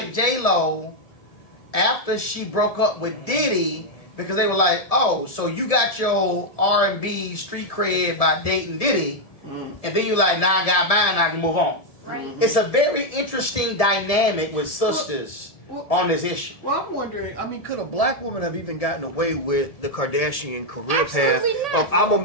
J-Lo after she broke up with Diddy because they were like, oh, so you got your R&B street cred by dating Diddy, and then you're like, nah, I got mine, I can move on. Right. It's a very interesting dynamic with sisters on this issue. Well, I'm wondering, I mean, could a black woman have even gotten away with the Kardashian career Absolutely path not. of I'm gonna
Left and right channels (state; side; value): late; right; 1.7 ms